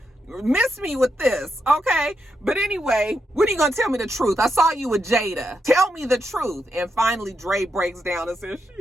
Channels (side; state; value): both; normal; correlation 0.83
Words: miss me with this, okay? But anyway, when are you gonna tell me the truth? I saw you with Jada. Tell me the truth. And finally, Dre breaks down and says,